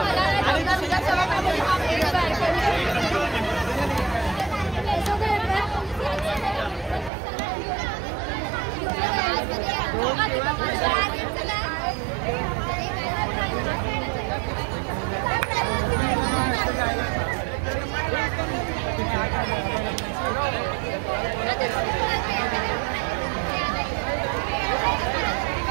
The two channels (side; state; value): left; drops out; at 7.1 s